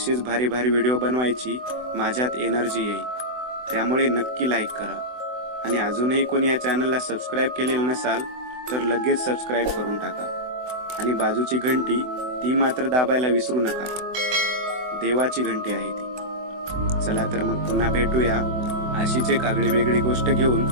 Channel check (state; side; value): late; left; 24 ms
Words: भारी भारी व्हिडिओ बनवायची माझ्यात एनर्जी येईल. त्यामुळे नक्की लाईक करा आणि अजूनही कोणी या चॅनलला सबस्क्राईब केलेलं नसाल तर लगेच सबस्क्राईब करून टाका आणि बाजूची घंटी ती मात्र दाबायला विसरू नका. देवाची घंटी आहे ती. चला तर मग पुन्हा भेटूया अशीच एक आगळी वेगळी गोष्ट घेऊन